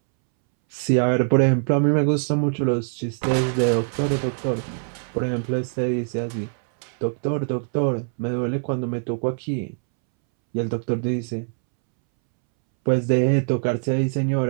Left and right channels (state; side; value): silent; left; 63 dB below the other